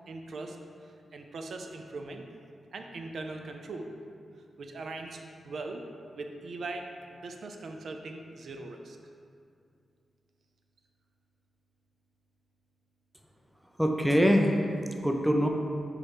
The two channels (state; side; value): normal; both; correlation 0.93